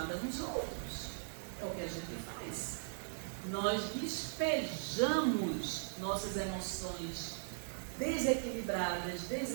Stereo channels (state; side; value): silent; left; 52 dB below the other